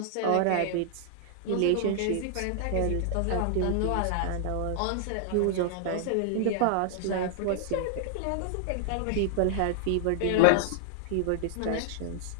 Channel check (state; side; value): different; both; correlation -0.01